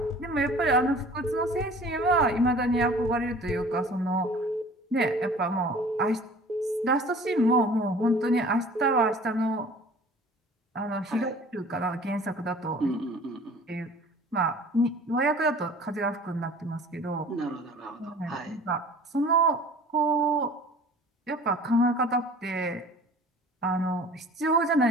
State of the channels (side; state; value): both; normal; correlation 0.47